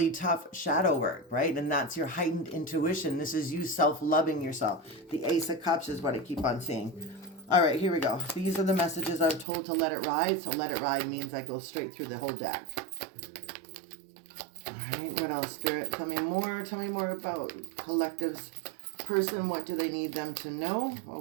tough shadow work, right? And that's your heightened intuition. This is you self-loving yourself. The Ace of Cups is what I keep on seeing. All right, here we go. These are the messages I'm told to let it ride. So let it ride means I go straight through the whole deck. All right, what else, Spirit? Tell me more. Tell me more about collective's person. What do they need them to know? Oh,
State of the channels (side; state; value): left; drops out; at 9.5 s